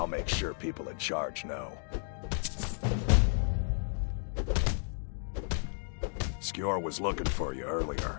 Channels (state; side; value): silent; right; 56 dB below the other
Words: make sure people in charge know. Skjor was looking for you